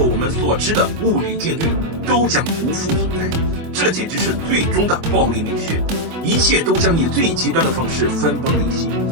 我们所知的物理定律，都将不复存在。这简直是最终的暴力美学，一切都将以最极端的方式分崩离析，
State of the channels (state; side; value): late; left; 24 ms